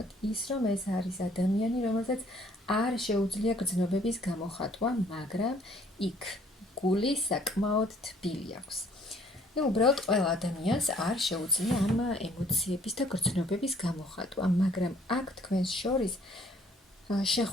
ის, რომ ეს არის ადამიანი, რომელსაც არ შეუძლია გრძნობების გამოხატვა, მაგრამ იქ გული საკმაოდ თბილი აქვს. უბრალოდ ყველა ადამიანს არ შეუძლია ამ ემოციების და გრძნობების გამოხატვა, მაგრამ აქ თქვენს შორის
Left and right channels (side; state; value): both; normal; correlation 0.60